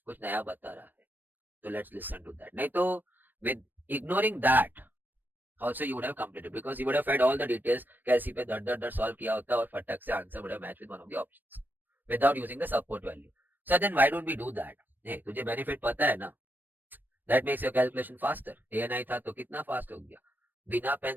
कुछ नया बता रहा है, so let's listen to that, नहीं तो with ignoring that also you would have completed because you would have fed all the details, कैसी पे दर दर दर solve किया होता और फटक से answer would have matched with one of the options without using the support value. So then why don't we do that? hey, तुझे benefit पता है ना, that makes your calculation faster. ANI था तो कितना fast हो गया, बिना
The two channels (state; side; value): late; left; 0.091 ms